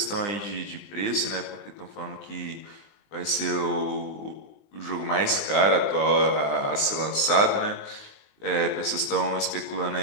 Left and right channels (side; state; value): right; late; 20 ms